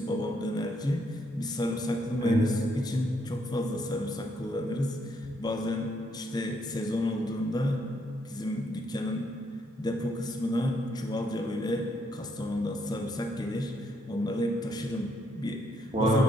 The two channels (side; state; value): both; normal; correlation 0.73